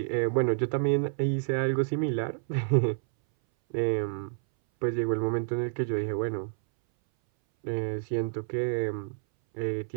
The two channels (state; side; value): silent; left; 59 dB below the other